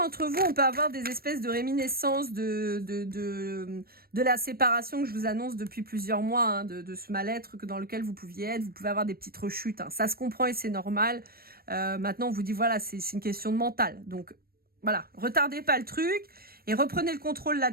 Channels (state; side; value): late; left; 0.44 ms